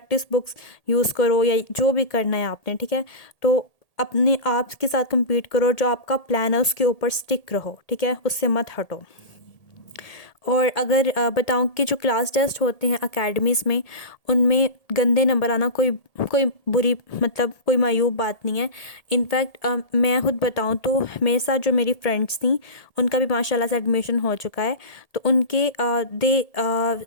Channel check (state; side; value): late; right; 1.8 ms